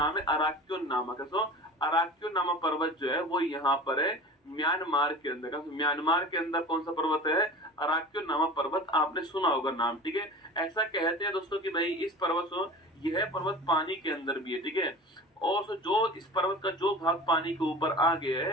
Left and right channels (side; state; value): both; normal; correlation 0.36